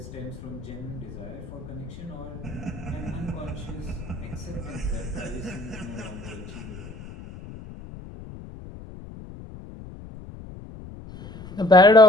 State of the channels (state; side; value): noise; left; rumble, 14 dB below the sound